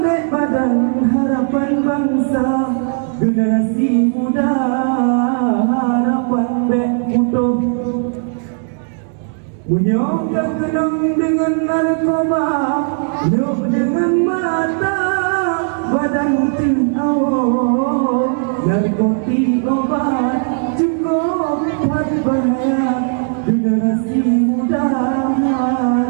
dek badan harapan bangsa generasi muda harapan bek utuh menyongkak kenang dengan narkoba nyok dengan mata badan awal narkotik obat cukup buat bahaya generasi muda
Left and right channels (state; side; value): silent; left; 58 dB below the other